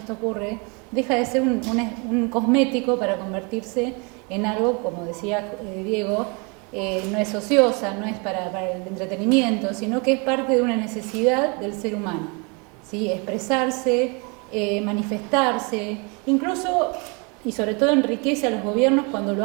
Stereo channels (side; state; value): left; quieter; 31.9 dB